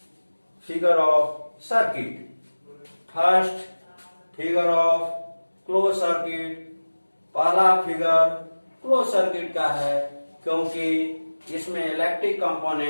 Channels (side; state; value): both; inverted; correlation -1.00